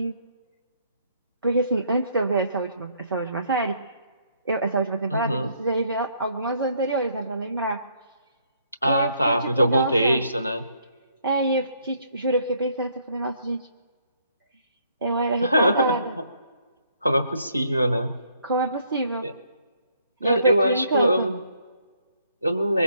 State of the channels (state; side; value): inverted; both; correlation -0.68